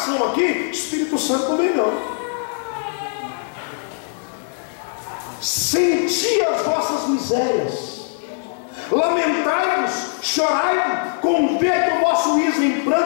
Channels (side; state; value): right; silent; digital silence